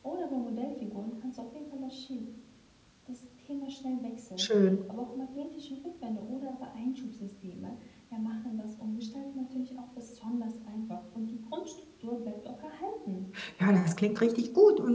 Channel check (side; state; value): both; identical; correlation 1.00